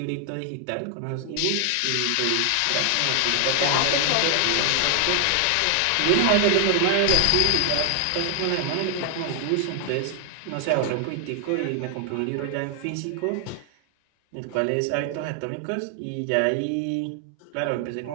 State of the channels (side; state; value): both; different; correlation 0.00